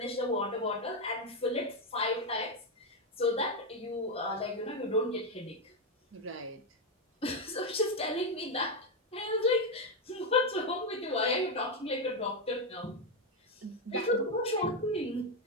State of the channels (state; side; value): normal; both; correlation 0.06